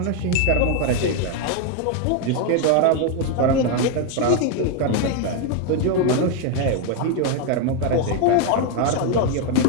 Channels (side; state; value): both; different; correlation 0.01